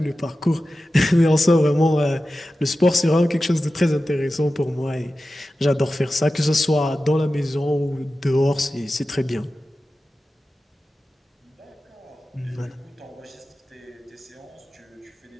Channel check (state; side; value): normal; both; correlation 0.94